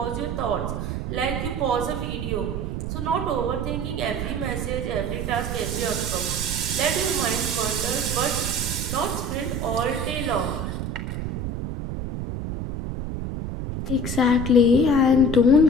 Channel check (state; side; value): noise; right; rumble, 3 dB below the sound